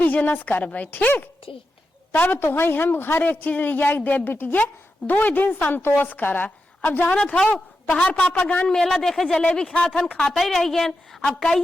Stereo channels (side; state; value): both; normal; correlation 0.89